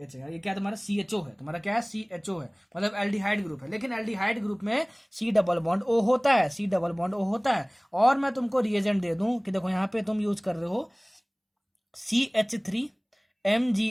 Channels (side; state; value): both; identical; correlation 1.00